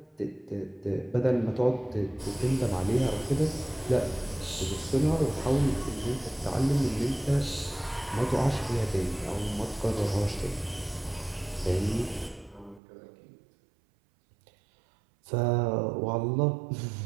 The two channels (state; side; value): drops out; left; at 12.8 s